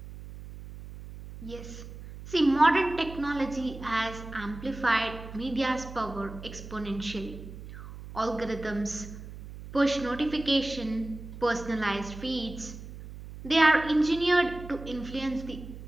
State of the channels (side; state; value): right; noise; hum, 13 dB below the sound